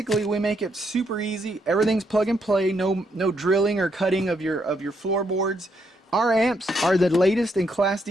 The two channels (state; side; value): normal; both; correlation 0.76